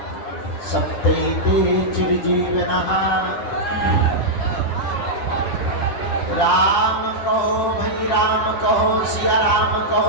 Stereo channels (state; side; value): late; right; 9.9 ms